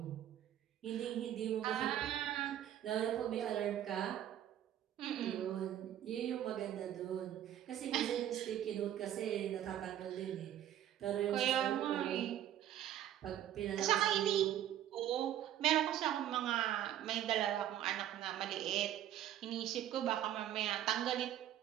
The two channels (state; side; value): quieter; left; 11.5 dB